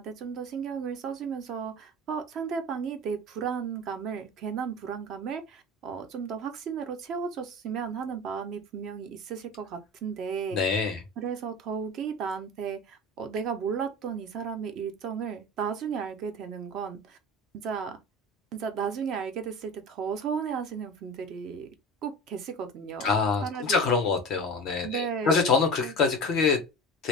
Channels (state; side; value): normal; both; correlation 0.32